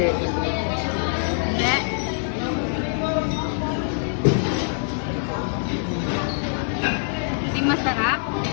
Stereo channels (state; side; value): silent; right; digital silence